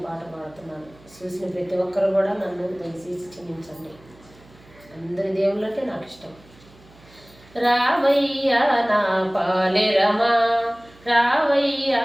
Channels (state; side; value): noise; right; hum, 26 dB below the sound